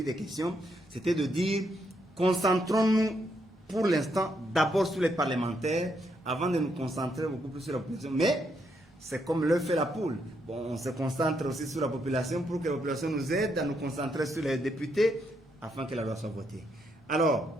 de questions. C'était de dire, concentrons-nous pour l'instant, d'abord sur les parlementaires, avant de nous concentrer beaucoup plus sur la population. Mais c'est comme l'œuf et la poule. Bon, on se concentre aussi sur la population pour que la population nous aide à nous concentrer sur les députés afin que la loi soit votée.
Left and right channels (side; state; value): both; normal; correlation 0.77